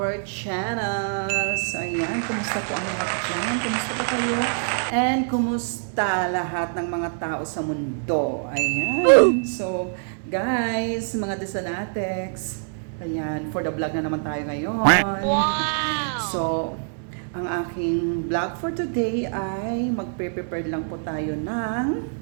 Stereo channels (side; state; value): left; silent; digital silence